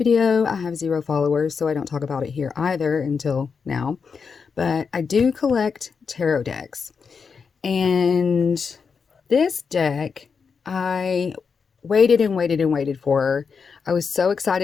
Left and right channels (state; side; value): quieter; right; 5.7 dB